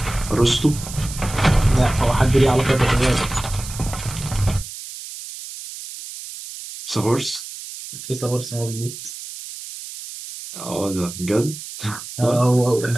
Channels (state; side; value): noise; right; hiss, 12 dB below the sound